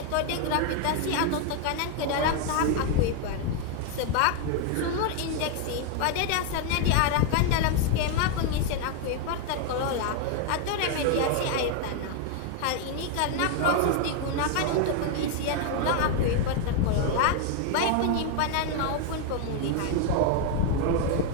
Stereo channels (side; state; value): both; different; correlation 0.00